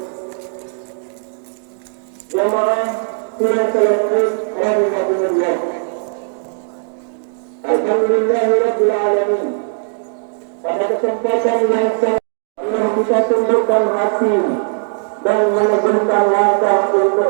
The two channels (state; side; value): silent; left; digital silence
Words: Jamaah sudah selesai rahimahumullah. Alhamdulillahirabbil alamin. Pada kesempatan yang sangat kita tundukkan hati dan menegurkan langkah untuk